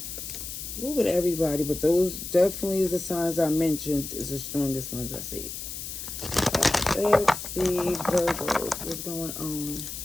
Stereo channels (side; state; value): left; noise; hiss, 8 dB below the sound